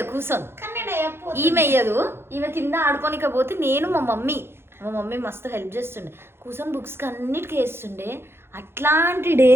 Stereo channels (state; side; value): late; left; 0.11 ms